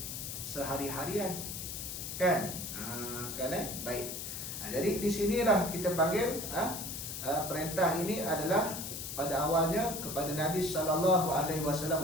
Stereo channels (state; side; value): noise; left; hiss, 6 dB below the sound